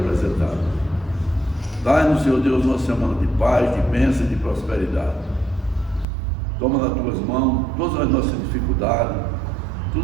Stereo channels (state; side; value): drops out; left; at 6.1 s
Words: Dai-nos, Senhor Deus, uma semana de paz, de bênção e de prosperidade. Toma nas Tuas mãos todas as nossas dificuldades,